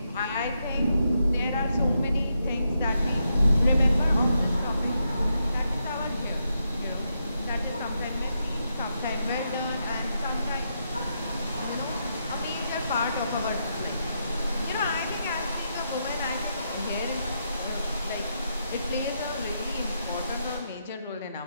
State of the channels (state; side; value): inverted; both; correlation -0.82